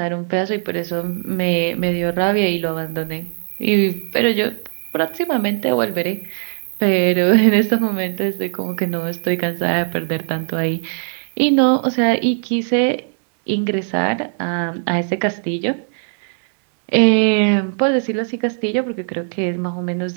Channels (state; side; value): silent; left; digital silence